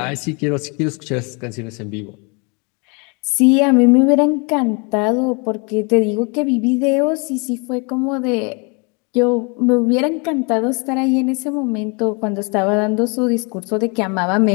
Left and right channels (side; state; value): right; quieter; 32.4 dB